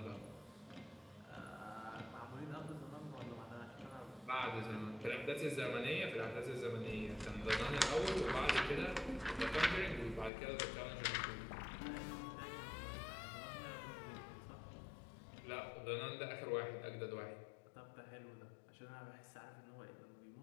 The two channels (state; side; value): drops out; right; at 10.3 s